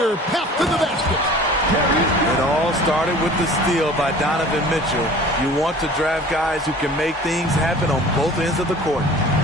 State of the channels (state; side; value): normal; both; correlation 0.45